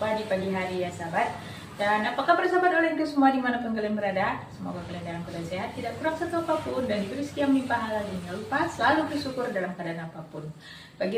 di pagi hari ya sahabat. Dan apa kabar sahabat olehku semua dimanapun kalian berada. Semoga kalian dalam keadaan sehat, tidak kurang satu apapun, dan diberi rezeki yang melimpah halal. Jangan lupa selalu bersyukur dalam keadaan apapun. Bagi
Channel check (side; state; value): both; identical; correlation 1.00